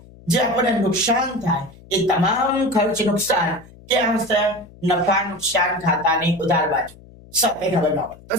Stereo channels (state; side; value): noise; left; hum, 22 dB below the sound